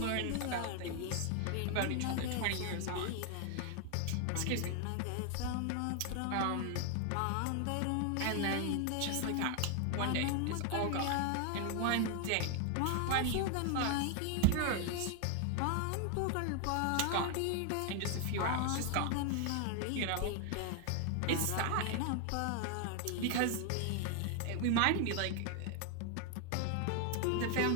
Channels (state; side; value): different; both; correlation 0.00